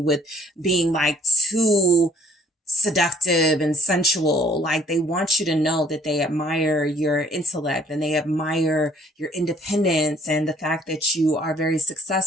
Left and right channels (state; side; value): normal; both; correlation 0.59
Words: being too seductive and sensual. Like, they want you to know that they admire your intellect and they admire your independence and the fact that you are very